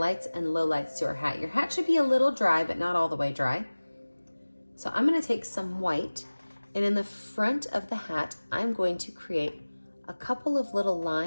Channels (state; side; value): inverted; both; correlation -1.00